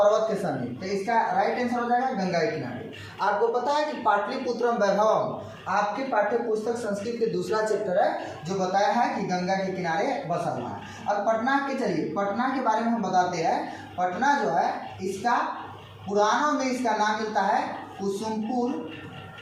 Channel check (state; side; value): identical; both; correlation 1.00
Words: के समीप। तो इसका राइट आंसर हो जाएगा गंगा के किनारे। आपको पता है कि पाटलिपुत्रम वैभवम आपके पाठ्य पुस्तक संस्कृत के दूसरा चैप्टर है जो बताया है कि गंगा के किनारे बसा हुआ है। अब पटना के, चलिए पटना के बारे में हम बताते हैं। पटना जो है इसका पुराणों में इसका नाम मिलता है कुसुमपुर,